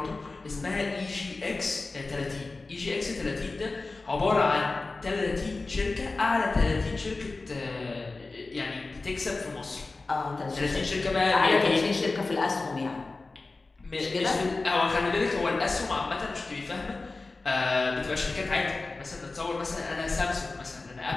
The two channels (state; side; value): quieter; right; 3.6 dB